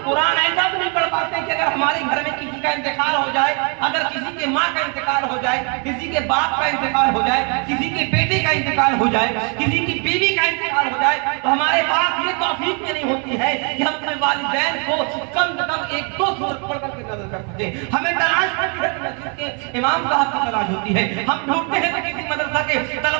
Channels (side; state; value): left; quieter; 36.7 dB